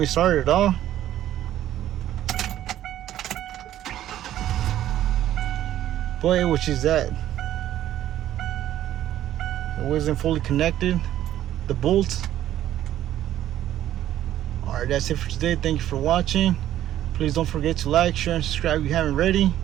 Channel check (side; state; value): left; quieter; 12.4 dB